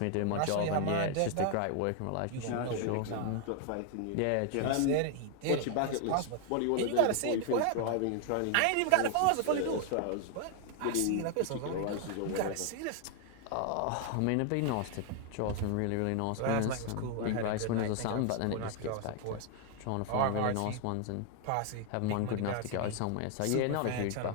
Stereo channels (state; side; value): different; both; correlation 0.00